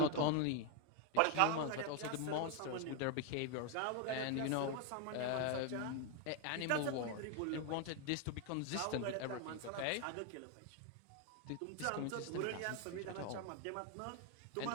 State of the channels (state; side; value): different; both; correlation 0.01